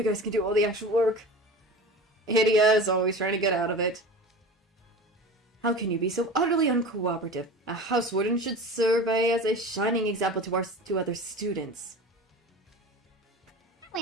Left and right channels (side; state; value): both; normal; correlation 0.34